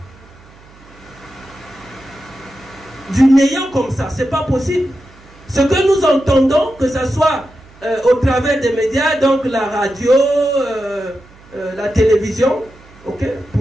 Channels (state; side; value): noise; right; hum, 25 dB below the sound